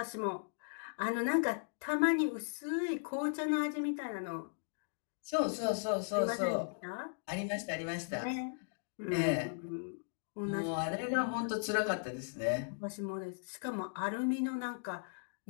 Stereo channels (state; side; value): silent; right; digital silence